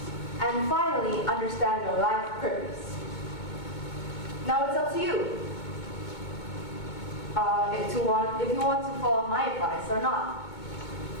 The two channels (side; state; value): right; late; 2.2 ms